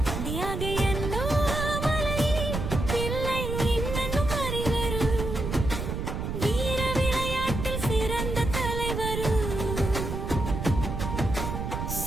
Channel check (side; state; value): right; noise; rumble, 3 dB below the sound